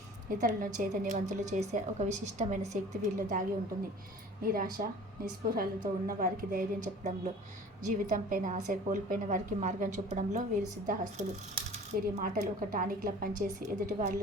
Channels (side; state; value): both; normal; correlation 0.44